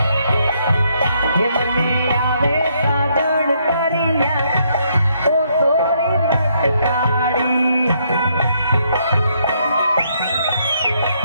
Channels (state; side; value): inverted; both; correlation -0.72